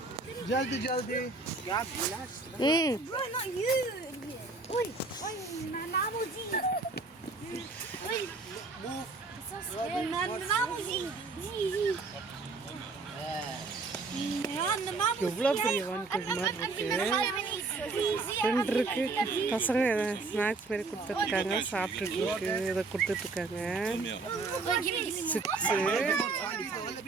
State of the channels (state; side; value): quieter; left; 3.8 dB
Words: जल्दी जल्दी Bro, not you. Oi, Nanamuji. Oi, move. Nanamuji. எவ்வளோ பெரிய வான்கோழி மாதிரி இருக்கு. ரெண்டு இருக்கு. பசங்க ஸ்நாக்ஸ் மாரி கொடுத்துட்ருக்காங்க, சாப்பிட்டுட்டு இருக்கு. இதை கொடுத்துட்ருக்காங்க. சிப்ஸு.